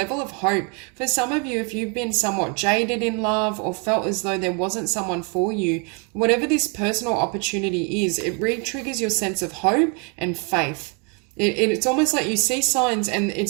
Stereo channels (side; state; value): left; quieter; 35.0 dB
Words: of hope. For some of you, if you've been somewhat jaded in love or felt as though there wasn't someone for you, whatever this personal opportunity is, it re-triggers your sense of hope and faith. It's almost like you see signs and